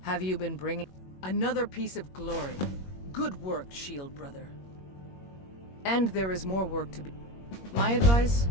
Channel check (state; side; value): late; right; 21 ms